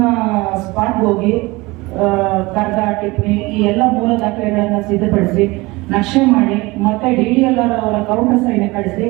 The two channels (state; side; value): quieter; left; 22.5 dB